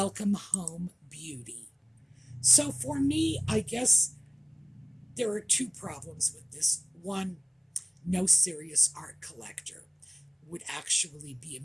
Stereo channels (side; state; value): both; identical; correlation 1.00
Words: home, beauty." So for me, I guess there are two problems with this. One, no serious art collector would actually be